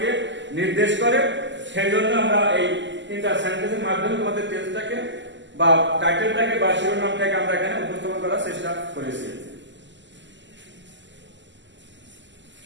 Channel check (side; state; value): left; late; 0.54 ms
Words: নির্দেশ করে। সেই জন্য আমরা এই 3টা সেন্টেন্সের মাধ্যমে তোমাদের টেন্সটাকে বা টাইটেলটাকে বা শিরোনামটাকে আমরা এখানে উপস্থাপন করার চেষ্টা করেছি।